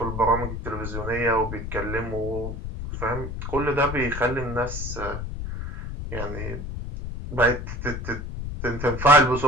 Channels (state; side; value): noise; left; rumble, 6 dB below the sound